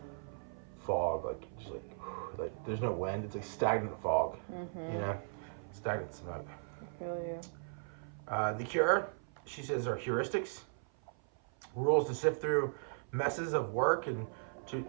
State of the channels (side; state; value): left; silent; 53 dB below the other